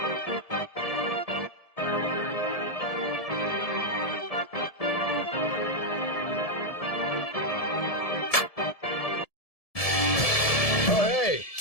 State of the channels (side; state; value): right; late; 1.7 ms